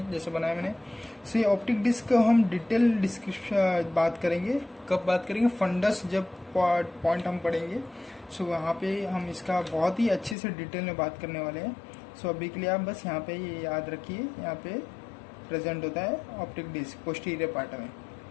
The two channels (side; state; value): right; drops out; at 10.4 s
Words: जैसे बनाया मैंने। सो ये ऑप्टिक डिस्क को हम डिटेल डिस्क्रिप्शन बात करेंगे। कब बात करेंगे? फंडस जब पॉइंट हम पढ़ेंगे, सो वहाँ पे हम इसका बहुत ही अच्छे से डिटेल में बात करने वाले हैं। सो अभी के लिए आप बस यहाँ पे ये याद रखिए, यहाँ पे प्रेजेंट होता है ऑप्टिक डिस्क पोस्टीरियर पार्ट में।